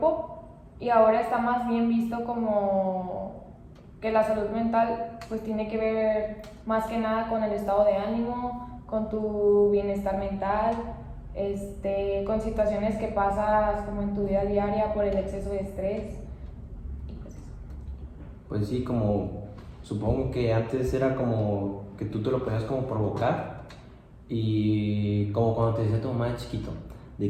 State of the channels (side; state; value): both; identical; correlation 1.00